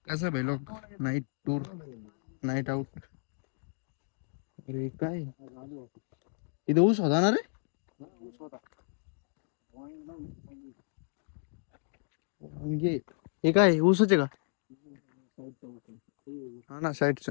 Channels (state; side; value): silent; right; digital silence